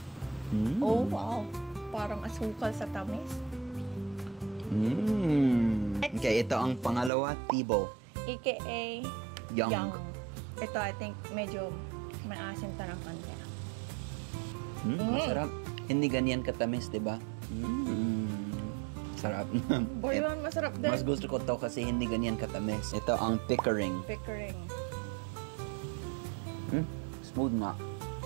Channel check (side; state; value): left; drops out; at 7.1 s